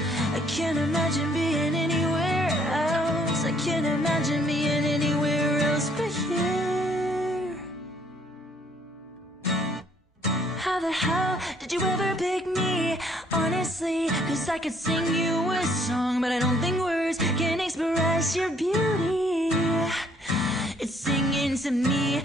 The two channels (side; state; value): both; normal; correlation 0.64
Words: I can't imagine being anywhere else. I can't imagine being anywhere else but here. How the hell did you ever pick me? Honestly, 'cause I could sing you a song, but I don't think words can express your beauty. It's singing to me.